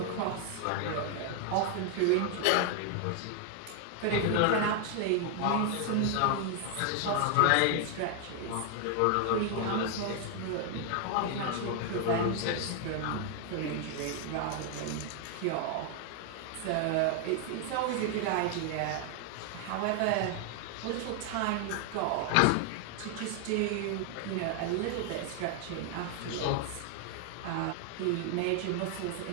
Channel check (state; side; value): different; both; correlation 0.00